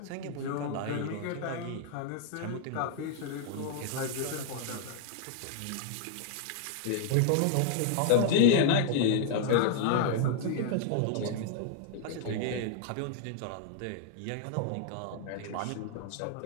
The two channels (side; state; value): both; different; correlation -0.01